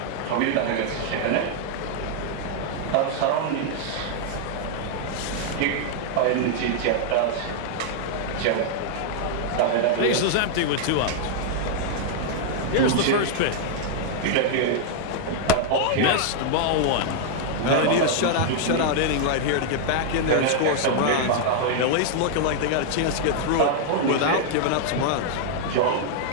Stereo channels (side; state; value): both; different; correlation -0.01